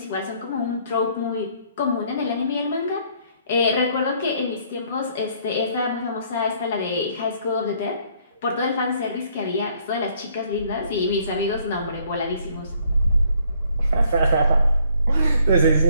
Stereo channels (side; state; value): both; inverted; correlation -0.65